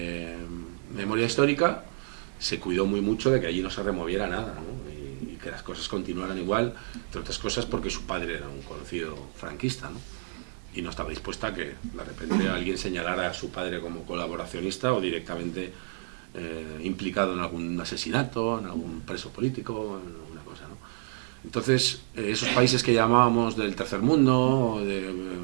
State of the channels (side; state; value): left; silent; 58 dB below the other